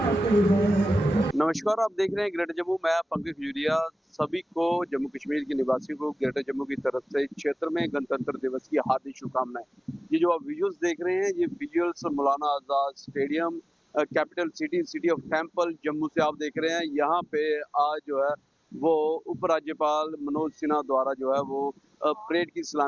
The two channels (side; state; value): both; normal; correlation 0.97